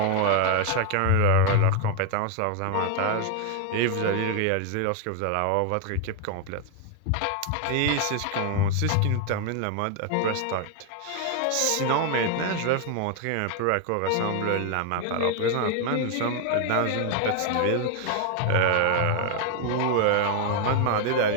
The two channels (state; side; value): different; both; correlation 0.01